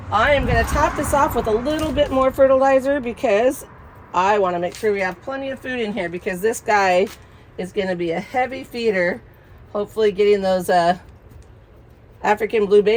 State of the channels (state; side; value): identical; both; correlation 1.00